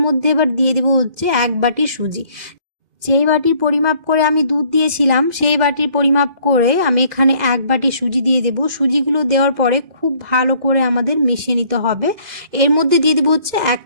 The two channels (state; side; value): late; left; 2.0 ms